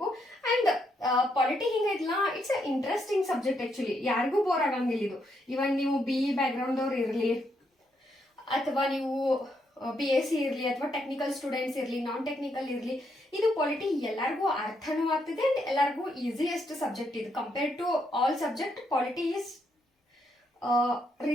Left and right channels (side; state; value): both; normal; correlation 0.77